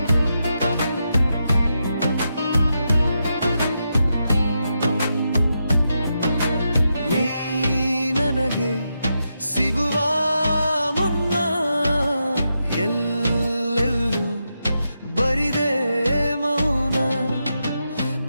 ನೀ ನನಗೆ ಸಿಗುವ ಮುನ್ನ ಎಲ್ಲೆಲ್ಲೂ ಬರಿದೆ ಮೌನ.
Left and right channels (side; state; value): both; inverted; correlation -0.85